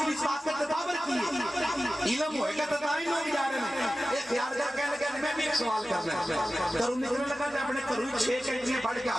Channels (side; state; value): both; normal; correlation 0.95